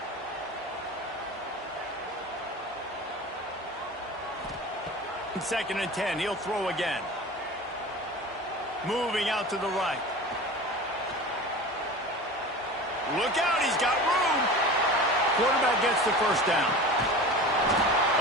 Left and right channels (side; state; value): both; normal; correlation 0.34